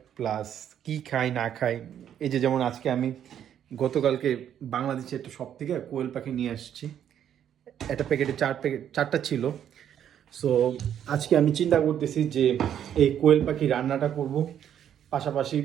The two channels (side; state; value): left; quieter; 9.7 dB